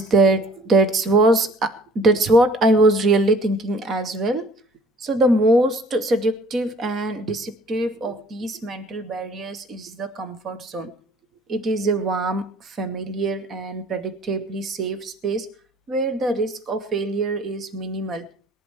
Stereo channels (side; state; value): both; normal; correlation 0.53